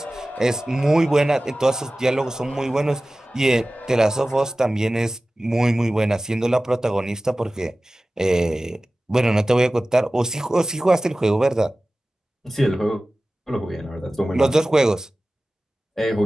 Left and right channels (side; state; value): both; normal; correlation 0.96